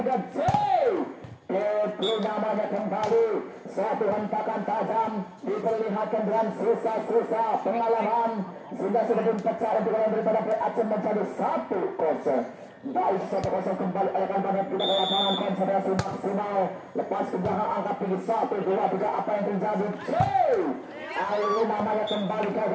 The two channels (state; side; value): identical; both; correlation 1.00